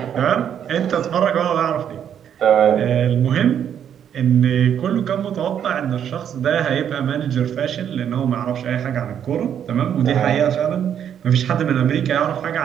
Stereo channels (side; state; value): left; quieter; 9.0 dB